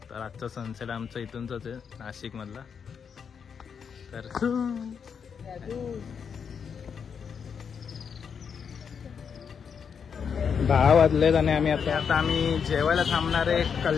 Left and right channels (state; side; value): quieter; right; 6.8 dB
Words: तर आजचा सनसेट आमचा इथूनच आहे, नाशिकमधला. तर 10 वाजलेत आणि आता आम्ही जेवायला थांबणार आहे